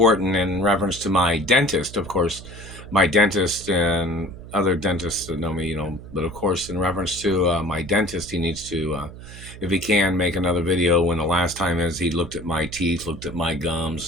in reference to my dentist, of course. My dentist and other dentists that know me, but of course, in reference to my dentist, he needs to, if he can, make another video when the last time is he looked at my teeth, looked at my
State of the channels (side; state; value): right; noise; hum, 15 dB below the sound